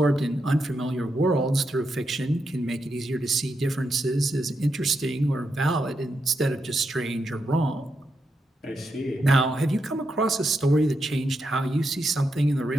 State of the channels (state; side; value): normal; both; correlation 0.84